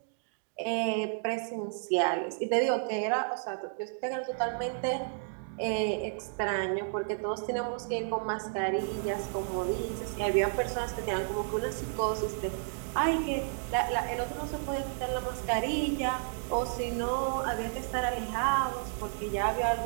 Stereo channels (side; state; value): left; silent; digital silence